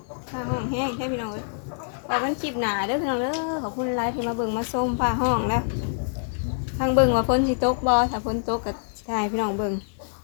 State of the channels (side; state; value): right; silent; digital silence